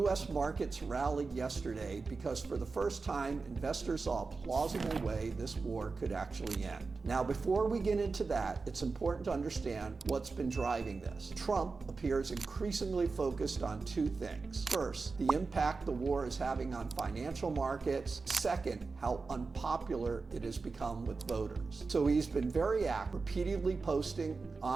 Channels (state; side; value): quieter; left; 4.2 dB